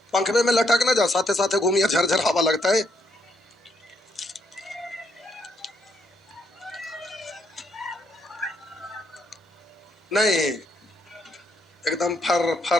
पंखवे में लटक ना जा, साथे साथे घूमिए, झरझर हवा लगता है। नहीं, एकदम फर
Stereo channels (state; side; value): normal; both; correlation 0.74